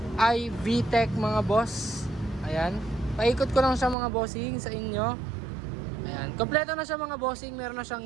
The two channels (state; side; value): drops out; left; at 4.0 s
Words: I VTEC mga boss. Ayan. Paikot ko lang siya mga bossing sa inyo. Ayan, kompleto na siya mga bossing, meron na siyang